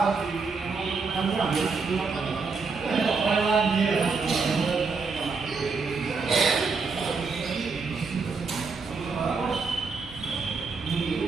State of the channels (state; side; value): quieter; left; 4.7 dB